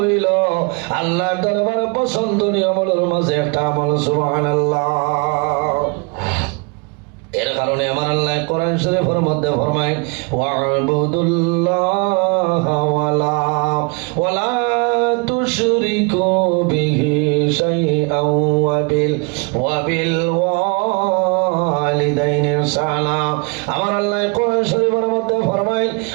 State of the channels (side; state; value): left; quieter; 31.3 dB